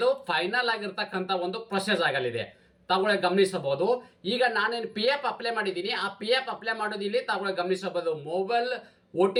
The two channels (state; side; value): identical; both; correlation 1.00